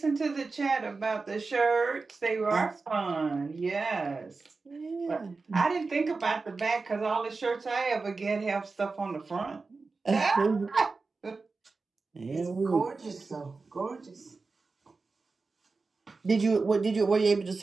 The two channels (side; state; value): left; quieter; 4.1 dB